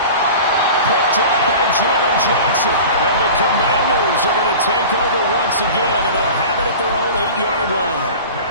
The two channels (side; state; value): both; inverted; correlation -0.37